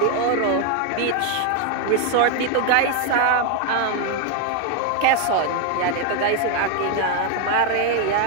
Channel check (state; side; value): different; both; correlation 0.01